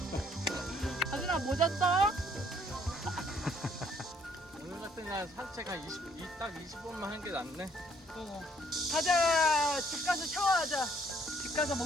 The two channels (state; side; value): normal; both; correlation 0.64